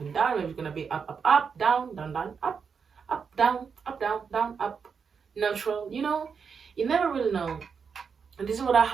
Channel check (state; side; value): quieter; left; 6.1 dB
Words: down. Maybe it's gonna be up, down, down, down, up, down, down, up, neutral. You never really know. And this is what I